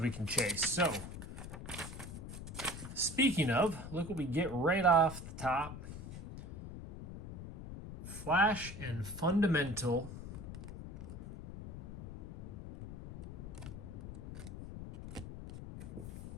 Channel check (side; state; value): left; noise; rumble, 10 dB below the sound